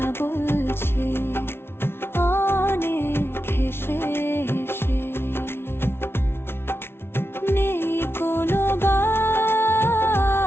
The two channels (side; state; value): right; late; 0.12 ms